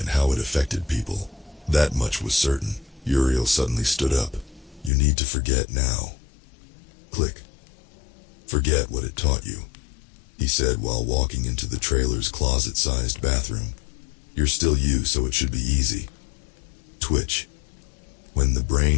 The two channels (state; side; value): drops out; right; at 4.9 s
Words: how it affected people. That much was certain. Uriel suddenly stood up. You need to forget now. Click. Forget what it taught you, he said while walking into the trailer's closet-sized bathroom. You're still you, so it should be easy. Twitch. When the